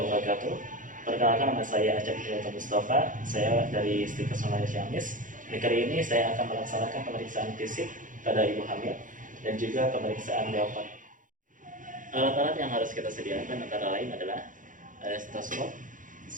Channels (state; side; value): late; left; 0.38 ms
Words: wabarakatuh. Perkenalkan, nama saya Acep Hidayat Mustafa. Saya dari Stikes Online Ciamis. Di kali ini saya akan melaksanakan pemeriksaan fisik pada ibu hamil dan juga pemeriksaan leopard. Alat-alat yang harus kita sediakan antara lain adalah ada stetoskop,